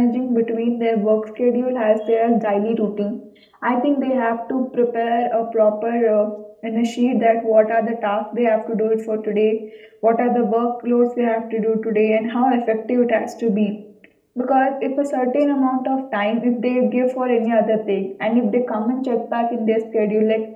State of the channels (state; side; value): identical; both; correlation 1.00